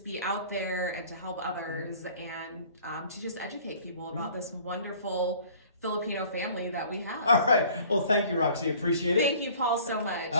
be out there and to help others and to just educate people about this wonderful Filipino family that we have. All right. Well, thank you, Roxy. Appreciate it. Thank you, Paul, so much.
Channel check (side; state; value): both; inverted; correlation -0.51